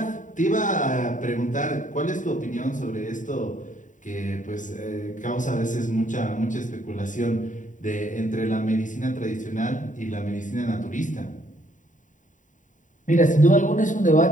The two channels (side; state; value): right; late; 0.37 ms